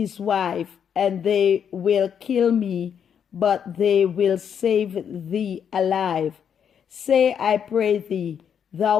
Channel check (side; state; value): right; quieter; 8.0 dB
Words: wife, and they will kill me, but they will save thee alive. Say, I pray thee,